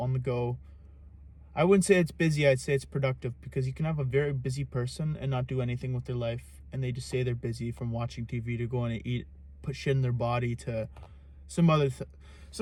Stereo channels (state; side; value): identical; both; correlation 1.00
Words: the go. I wouldn't say it's busy, I'd say it's productive, because you can have a very busy person and not do anything with their life, and they just say they're busy, from watching TV to going to eat, put shit in their body, to some